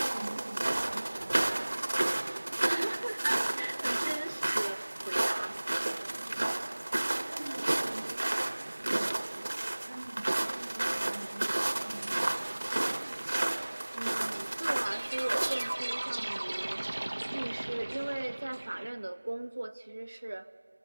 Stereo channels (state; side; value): inverted; both; correlation -1.00